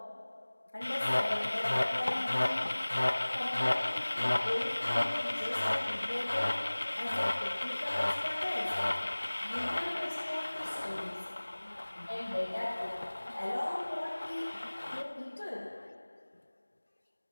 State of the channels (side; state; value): both; inverted; correlation -1.00